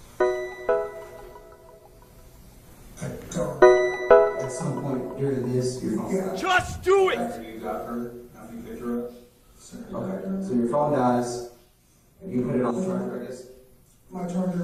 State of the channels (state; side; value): identical; both; correlation 1.00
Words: I don't. At some point during this, your phone died. Just do it! After you got her, after you picked her up? Okay, so your phone dies, and you put it on the charger, I guess? My